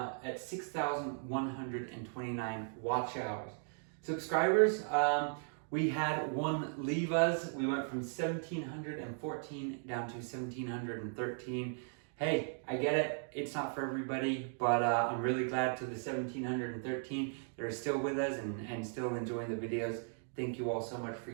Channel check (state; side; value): silent; left; 53 dB below the other